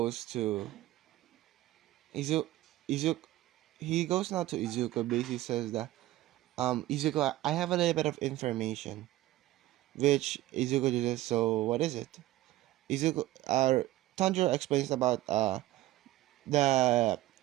to Izu Izuku. He goes now to Izuku. Basically says that Izuku, I have a little bit of information. Which Izuku just, so what is it? Izuku Tanjiro explains about the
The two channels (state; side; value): quieter; left; 16.1 dB